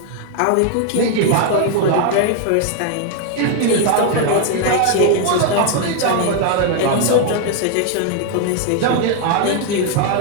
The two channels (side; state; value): both; different; correlation 0.01